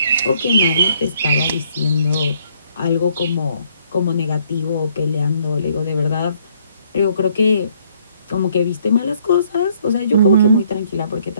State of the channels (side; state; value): both; inverted; correlation -0.66